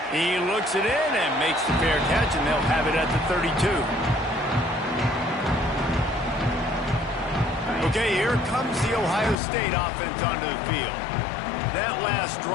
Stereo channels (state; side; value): drops out; right; at 9.3 s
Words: He looks it in and makes the fair catch, and they'll have it at the 32. Okay, here comes the Ohio State offense onto the field. That last